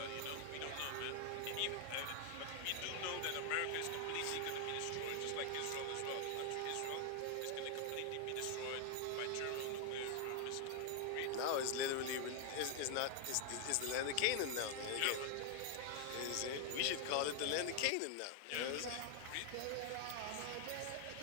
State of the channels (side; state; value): both; different; correlation 0.00